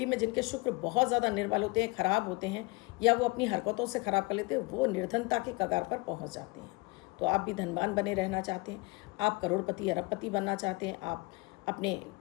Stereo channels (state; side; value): quieter; right; 25.9 dB